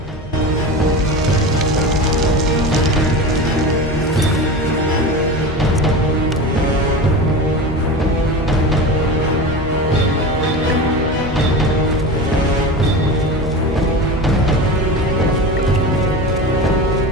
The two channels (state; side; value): normal; both; correlation 0.28